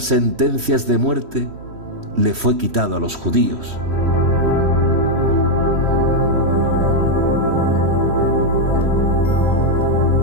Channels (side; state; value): left; late; 3.1 ms